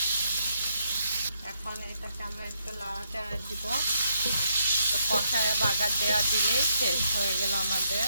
এখন এটাকে আমরা একটু লাড়াচাড়া দিব। তো কষায় বাগার দেওয়া দিলেই শেষ হয়ে গেল আমাদের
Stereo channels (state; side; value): inverted; both; correlation -0.75